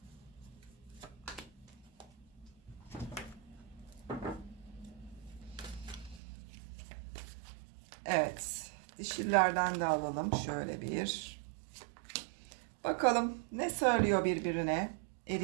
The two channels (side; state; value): left; drops out; at 6.2 s